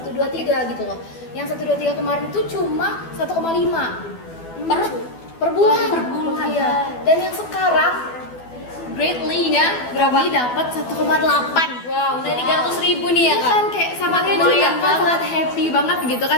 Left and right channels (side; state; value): right; late; 12 ms